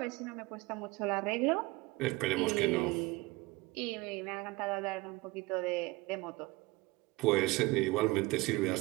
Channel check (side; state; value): left; quieter; 22.2 dB